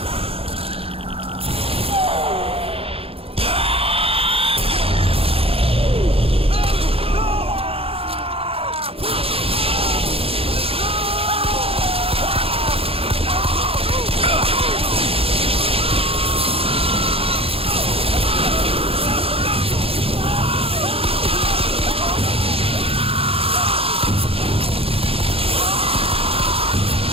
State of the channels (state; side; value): late; left; 0.27 ms